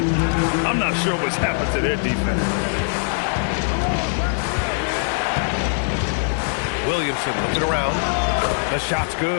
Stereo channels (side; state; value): right; silent; 65 dB below the other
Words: I'm not sure what's happened to their defense. Williamson looking around. The shot's